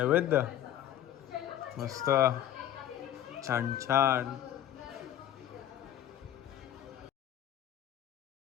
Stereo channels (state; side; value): quieter; right; 11.4 dB